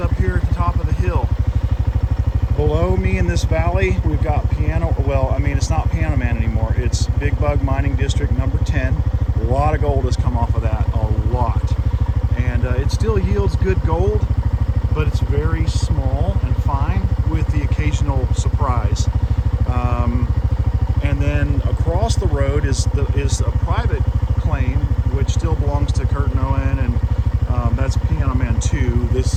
up here at the top of the hill. Below me in this valley, we've got it's not Piano Man anymore. It's Big Bug Mining District number 10. A lot of gold has come off of that, a lot. And it still yields good gold, but it's very small and fine with the occasional surprise. And then across the road is a private claim, which still belongs to Kurt and Owen, and that's Piano Man 2.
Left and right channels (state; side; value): identical; both; correlation 1.00